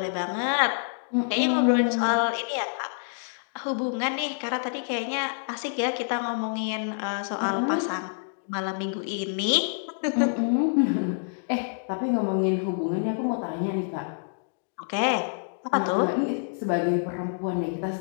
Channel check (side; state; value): right; silent; digital silence